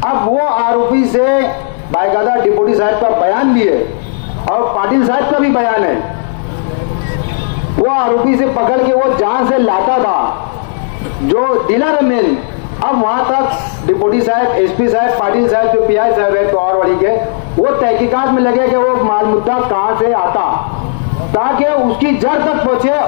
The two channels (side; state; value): right; silent; digital silence